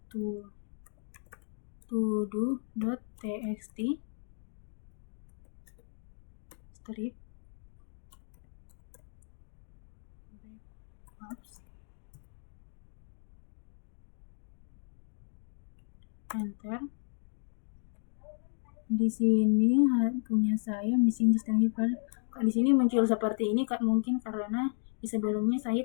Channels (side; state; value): right; silent; 55 dB below the other